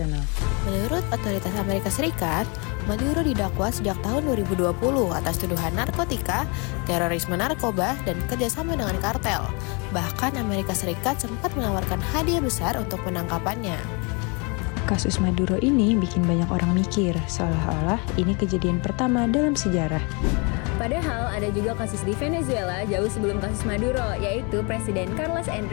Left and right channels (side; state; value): right; quieter; 32.1 dB